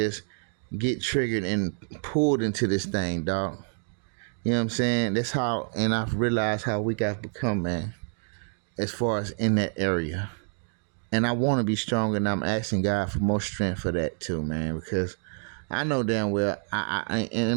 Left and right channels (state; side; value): silent; left; 60 dB below the other